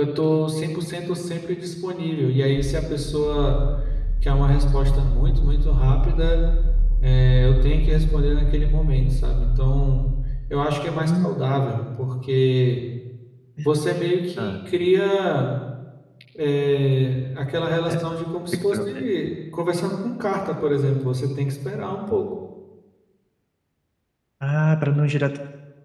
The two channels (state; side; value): identical; both; correlation 1.00